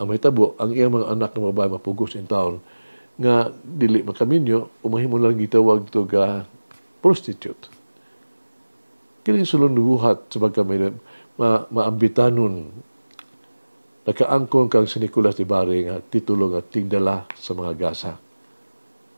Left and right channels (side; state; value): both; inverted; correlation -1.00